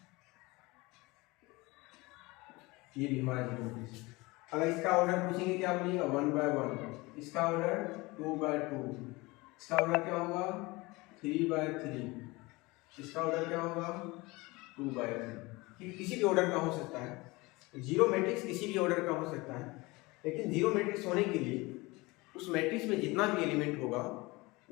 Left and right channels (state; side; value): quieter; right; 23.1 dB